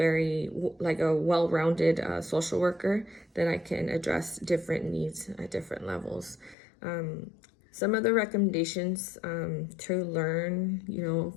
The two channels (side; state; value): right; drops out; at 6.6 s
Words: like a well-rounded social worker, that I can address different needs at different levels. Some of the recommendations to learn,